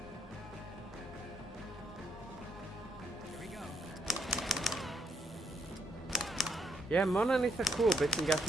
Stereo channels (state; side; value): normal; both; correlation 0.73